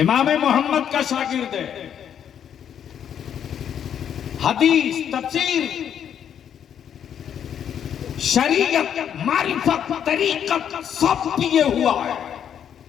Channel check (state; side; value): quieter; right; 8.9 dB